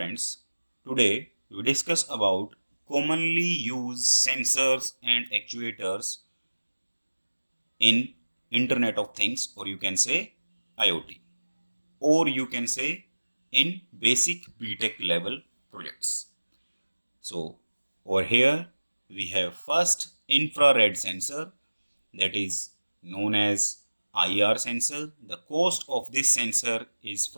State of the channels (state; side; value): inverted; both; correlation -1.00